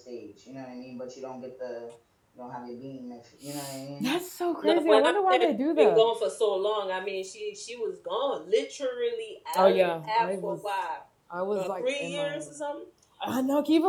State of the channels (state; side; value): identical; both; correlation 1.00